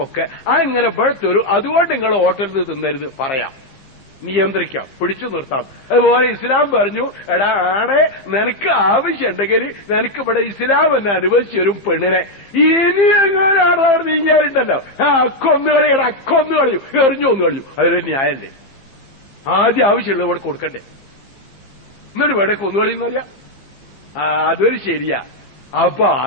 അങ്ങനെ ഇവിടെ തരും. അതുകൊണ്ട് നിങ്ങൾ ഹോട്ടലിൽ നിന്ന് തിന്നരുത് പറയാം, നിയന്ത്രിക്കാം, പിടിച്ചു നിർത്താം. അതുപോലെ ഇസ്ലാം പറഞ്ഞു, എടാ ആടെ നിനക്ക് ആവശ്യമുണ്ടെങ്കിൽ നിനക്ക് ഇവിടെ ഇസ്ലാം എന്നെ അനുവദിച്ചു തരും പെണ്ണിനെ. ഇനി എങ്ങനെയാണ് അവിടെ നീങ്ങാറുണ്ടല്ലോ, അക്കൊന്നുകളിയുടെ അക്കൊന്നു കളിയും, എറിഞ്ഞു ഒന്ന് കളിയും. അതൊരു ന്യായല്ലേ? ആദ്യം ആവശ്യമുള്ളത് ഇവിടെ കൊടുക്കണ്ടേ, എന്നിട്ട് ഇവിടെ കൊന്നുകളിയെന്നറിയാം. അതൊരു ശരിയാ. അപ്പൊ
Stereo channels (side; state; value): right; late; 15 ms